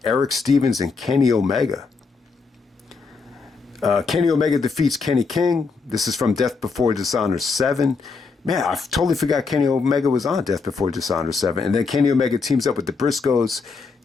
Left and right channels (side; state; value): right; quieter; 4.6 dB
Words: Eric Stevens and Kenny Omega. Kenny Omega defeats Kenny King. This is from Death Before Dishonor 7. Man, I totally forgot Kenny Omega was on Death Before Dishonor 7. And then Kenny Omega teams up with the Briscoes